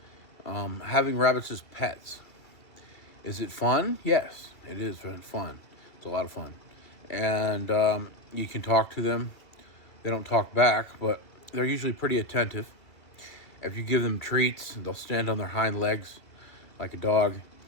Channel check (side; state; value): right; late; 2.4 ms